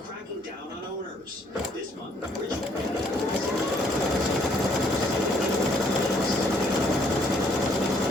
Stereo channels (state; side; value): normal; both; correlation 0.66